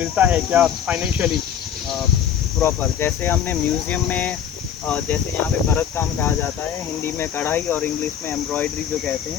है क्या फाइनेंशियली? प्रॉपर जैसे हमने म्यूज़ियम में जैसे यहाँ पे भरत काम कहा जाता है, हिंदी में कढ़ाई और इंग्लिश में एम्ब्रॉयडरी जो कहते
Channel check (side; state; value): right; quieter; 8.9 dB